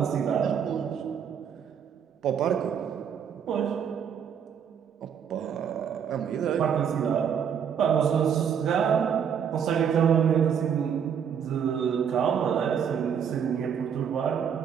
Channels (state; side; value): quieter; left; 7.8 dB